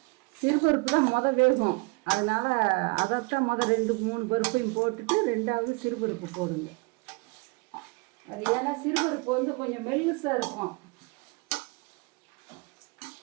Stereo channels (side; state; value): left; quieter; 28.8 dB